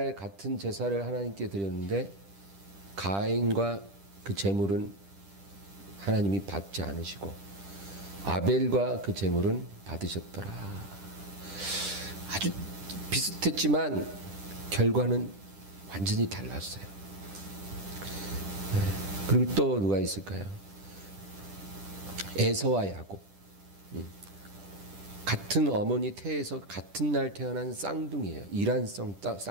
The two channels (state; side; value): late; left; 10 ms